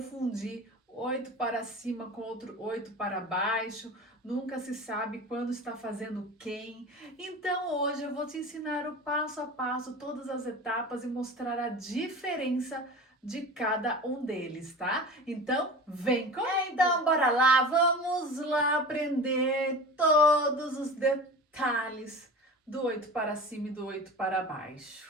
8 para cima com outro 8 para baixo, nunca se sabe quando está fazendo quem. Então hoje eu vou te ensinar o passo a passo, todas as etapas e mostrar a diferença de cada um deles, tá? Então, vem comigo! Então, bora lá, vamos lá aprender todos os detalhes do 8 para cima e do 8 para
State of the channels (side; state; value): both; normal; correlation 0.34